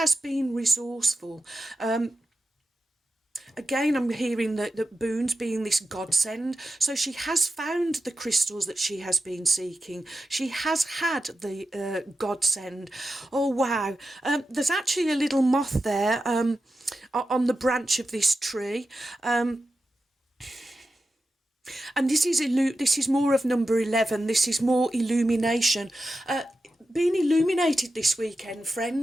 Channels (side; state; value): both; normal; correlation 0.91